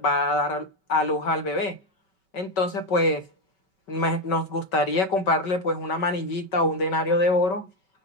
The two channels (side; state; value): right; late; 5.3 ms